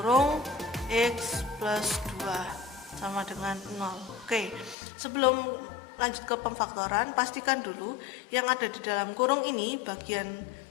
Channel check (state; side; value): drops out; right; at 4.8 s